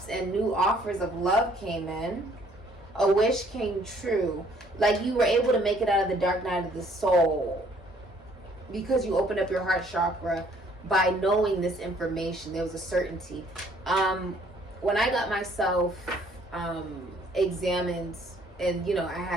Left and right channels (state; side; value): normal; both; correlation 0.62